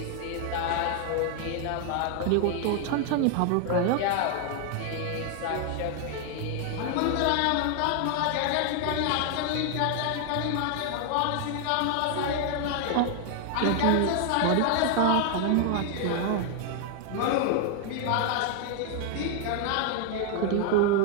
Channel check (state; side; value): different; both; correlation 0.00